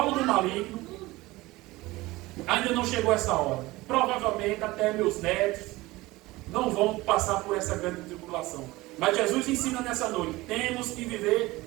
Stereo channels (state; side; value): quieter; left; 19.9 dB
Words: do maligno, ainda não chegou essa hora. Provavelmente até meus netos não vão passar por essa grande tribulação. Mas Jesus ensina nessa noite, temos que